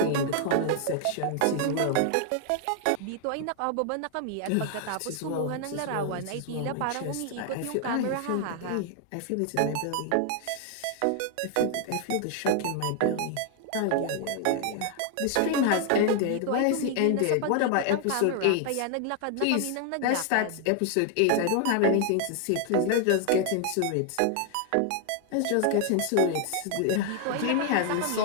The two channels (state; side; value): different; both; correlation 0.00